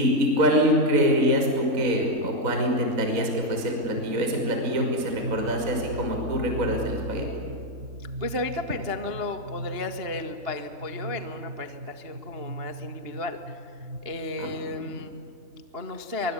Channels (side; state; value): left; late; 4.0 ms